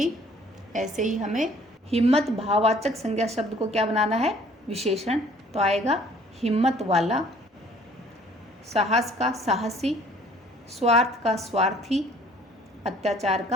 ऐसे ही हमें हिम्मत भाववाचक संज्ञा शब्द को क्या बनाना है? विशेषण। तो आएगा हिम्मत वाला। साहस का साहसी, स्वार्थ का स्वार्थी, अत्याचार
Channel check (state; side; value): normal; both; correlation 0.56